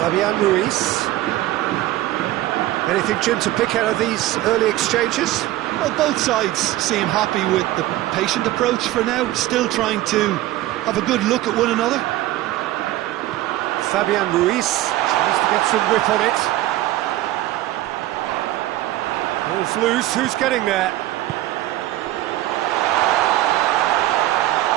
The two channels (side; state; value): left; quieter; 15.6 dB